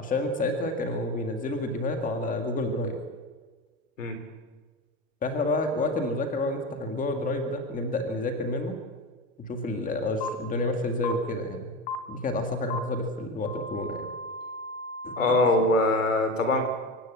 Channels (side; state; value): both; normal; correlation 0.23